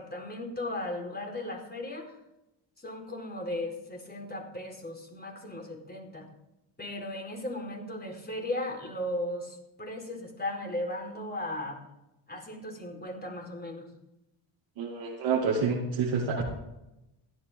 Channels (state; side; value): normal; both; correlation 0.11